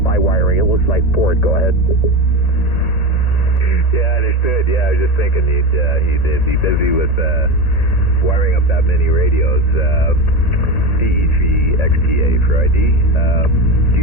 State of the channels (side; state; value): right; late; 1.9 ms